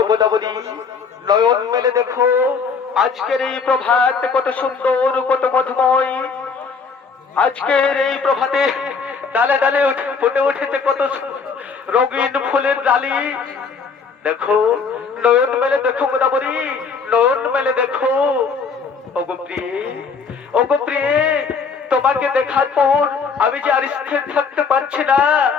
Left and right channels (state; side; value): quieter; right; 5.4 dB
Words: গোদাবরী, নয়ন মেলে দেখো আজকের এই প্রভাত কত সুন্দর, কত মধুময়। আজকের এই প্রভাতে ডালে ডালে ফুটে উঠেছে কত রঙিন ফুলের ডালি। দেখো, নয়ন মেলে দেখো গোদাবরী, নয়ন মেলে দেখো। ওগো প্রিয়ে, ওগো প্রিয়ে, তোমাকে দেখার পর আমি যে আর স্থির থাকতে পারছি না।